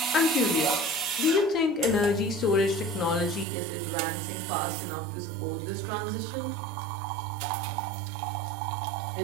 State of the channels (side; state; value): left; drops out; at 3.5 s